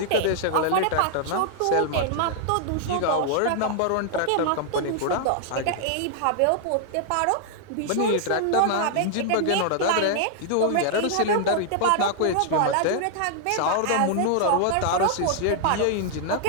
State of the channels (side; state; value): both; different; correlation -0.01